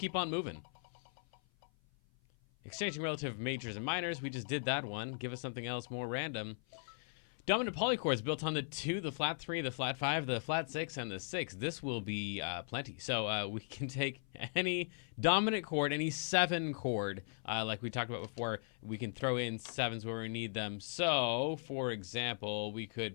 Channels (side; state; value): right; silent; 52 dB below the other